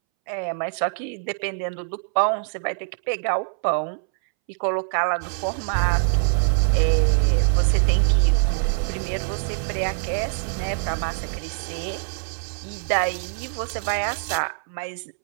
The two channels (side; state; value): left; silent; 63 dB below the other